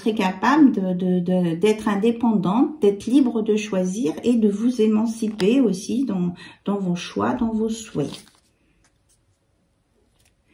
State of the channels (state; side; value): identical; both; correlation 1.00